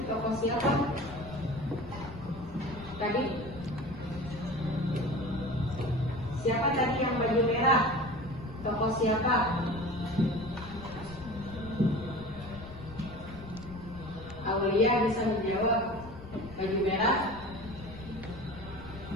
tokoh siapa? Tadi. Siapa tadi yang baju merah? Tokoh siapa? Aulia bisa menjawab. Baju merah.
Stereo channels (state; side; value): noise; left; rumble, 15 dB below the sound